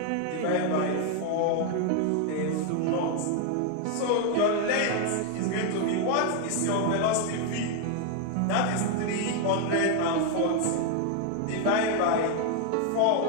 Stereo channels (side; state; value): both; different; correlation 0.00